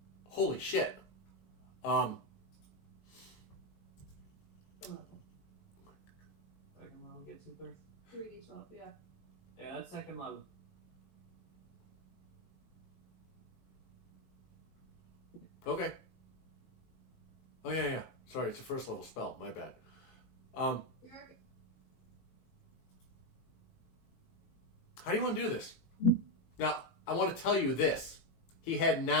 Holy shit. Second level gets you first. 3d12, yeah. Yeah, that's second level. Okay. Oh yeah. Sorry, it's a first level spell. My bad. You're okay. How do you want to do this? Now, I want to tell you this. He had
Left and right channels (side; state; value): right; late; 19 ms